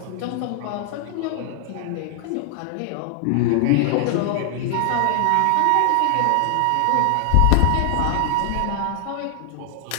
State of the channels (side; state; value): both; different; correlation 0.00